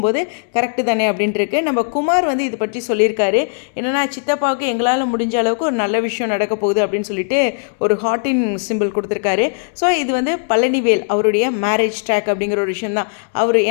போது கரெக்டு தானே அப்படின்ட்டு இருக்கு. நம்ம குமார் வந்து இது பற்றி சொல்லியிருக்காரு. என்னென்னா, சித்தப்பாவுக்கு எங்களால் முடிஞ்ச அளவுக்கு ஒரு நல்ல விஷயம் நடக்க போகுது அப்படின்னு சொல்லிட்டு ஒரு ஹார்ட்டின் சிம்பிள் கொடுத்துருக்காரு. ஸோ இது வந்து பழனிவேல் அவருடைய மேரேஜ் ட்ராக் அப்படிங்கிற ஒரு விஷயம் தான். அவர்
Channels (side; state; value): right; silent; 66 dB below the other